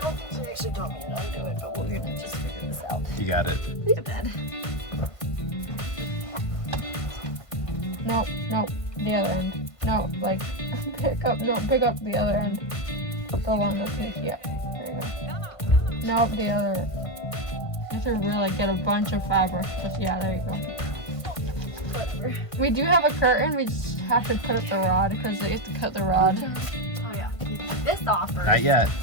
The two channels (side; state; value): right; late; 1.5 ms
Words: think she actually told me to undo it, but we're gonna just figure this out. You got it. The bed. Nope, nope, the other end. No, like, pick up the other end. Go along with me, yeah, there you go. Nope, the other. You should really get a bunch of fabric. Just, yeah, there you go. Whatever. We do have a curtain, we just have to put up the rod, because they have to cut the rod. Oh yeah, this off first. Not yet.